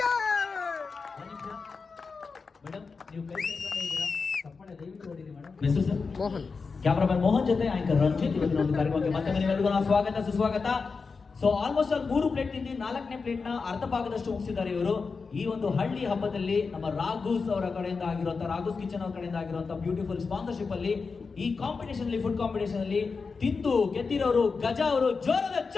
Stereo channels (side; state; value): right; quieter; 4.8 dB